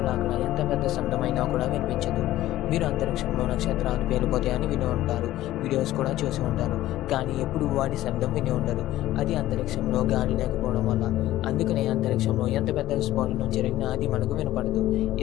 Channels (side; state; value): right; quieter; 14.8 dB